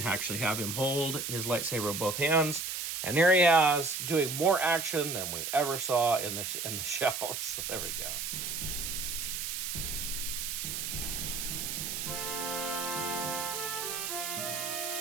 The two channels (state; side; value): noise; right; hiss, 3 dB below the sound